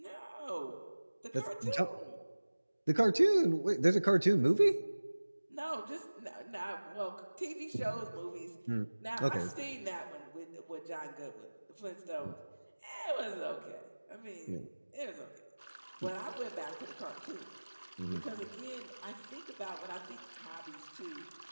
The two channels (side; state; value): both; inverted; correlation -1.00